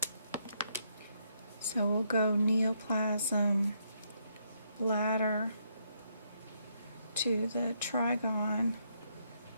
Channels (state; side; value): inverted; both; correlation -0.75